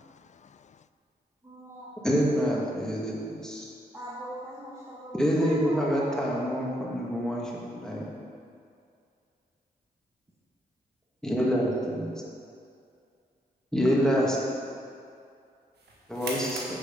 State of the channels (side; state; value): both; normal; correlation 0.76